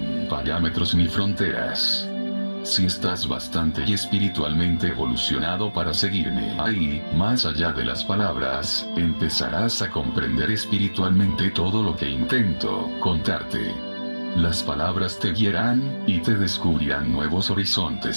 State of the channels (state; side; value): inverted; both; correlation -1.00